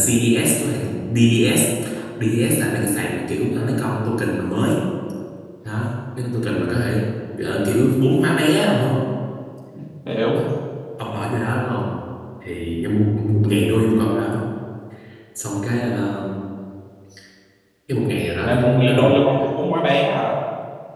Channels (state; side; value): identical; both; correlation 1.00